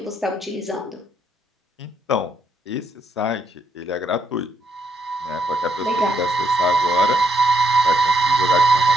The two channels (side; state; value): both; normal; correlation 0.74